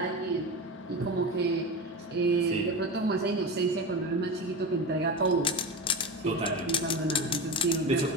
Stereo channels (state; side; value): normal; both; correlation 0.24